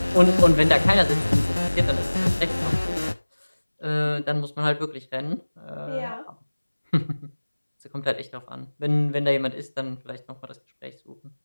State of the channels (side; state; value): both; inverted; correlation -1.00